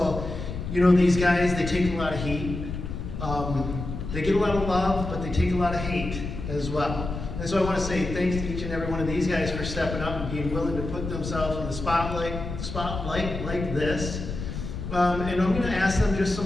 you know, these guys, they take a lot of heat. They get a lot of love, but they take a lot of hate as well. And so I want to say thanks to each and every one of these guys for stepping up and being willing to put themselves in the spotlight like this. And I'm going to ask them just some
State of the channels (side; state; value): left; noise; rumble, 7 dB below the sound